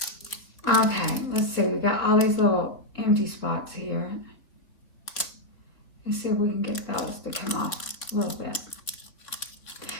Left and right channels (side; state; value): right; late; 3.3 ms